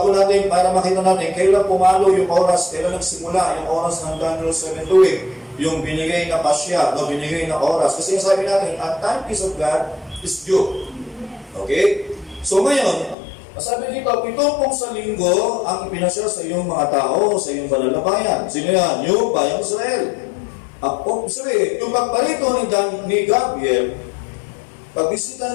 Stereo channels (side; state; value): right; drops out; at 13.2 s